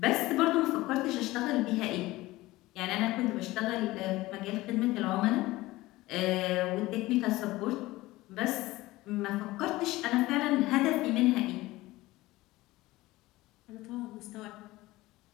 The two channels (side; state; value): right; quieter; 18.6 dB